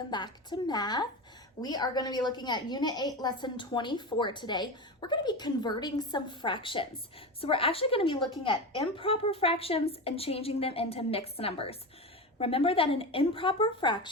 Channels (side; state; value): both; normal; correlation 0.23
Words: back to math. We are going to be looking at Unit 8, Lesson 24 today. We're going to be converting some fractions. So we're actually going to be looking at improper fractions and changing them into mixed numbers. Remember that an improper